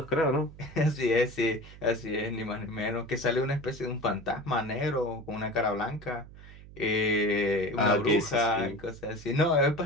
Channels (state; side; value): noise; right; hum, 18 dB below the sound